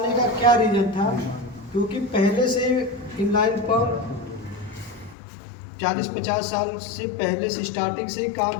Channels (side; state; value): right; drops out; at 5.2 s